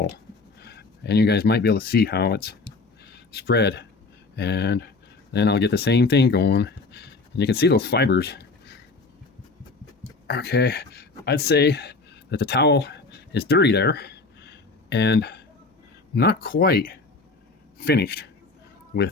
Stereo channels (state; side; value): quieter; right; 3.8 dB